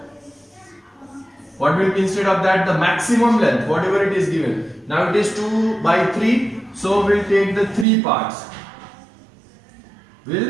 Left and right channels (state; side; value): drops out; left; at 7.9 s